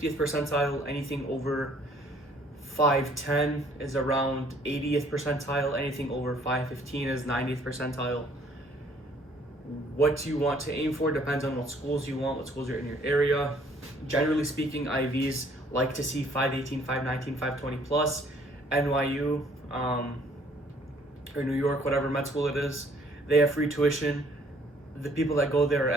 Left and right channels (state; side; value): normal; both; correlation 0.61